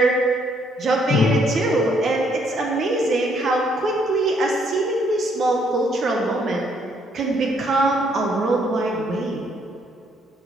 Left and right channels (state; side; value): normal; both; correlation 0.69